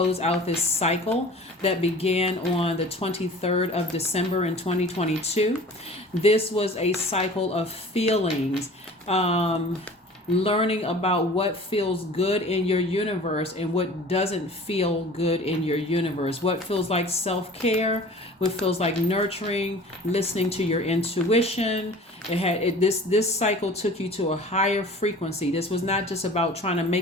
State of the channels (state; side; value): normal; both; correlation 0.44